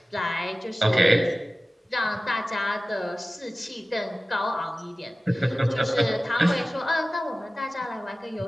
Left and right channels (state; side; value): normal; both; correlation 0.96